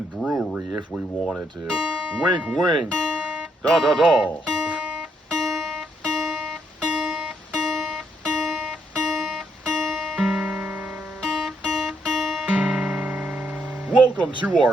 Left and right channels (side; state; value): both; normal; correlation 0.75